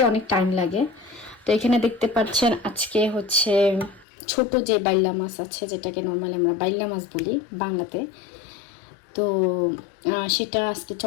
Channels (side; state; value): right; drops out; at 4.0 s